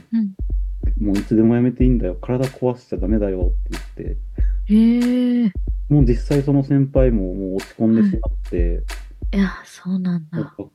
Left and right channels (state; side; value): identical; both; correlation 1.00